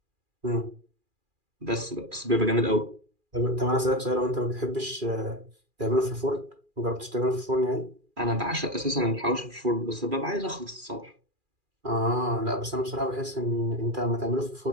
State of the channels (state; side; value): late; left; 2.4 ms